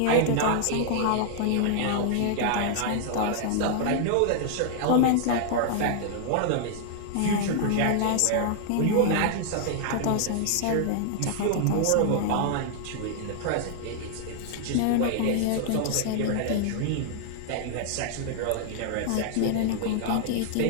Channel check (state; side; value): different; both; correlation -0.01